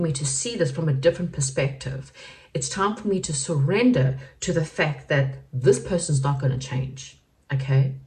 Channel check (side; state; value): both; identical; correlation 1.00